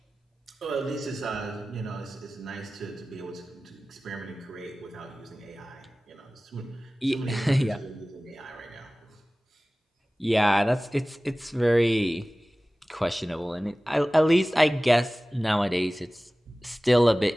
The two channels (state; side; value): normal; both; correlation 0.97